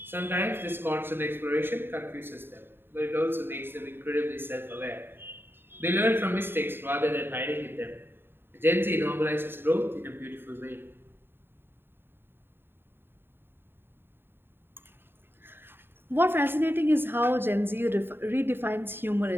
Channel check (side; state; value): left; late; 0.11 ms